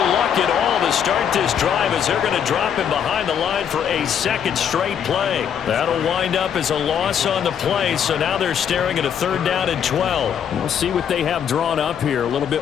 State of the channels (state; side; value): quieter; right; 8.4 dB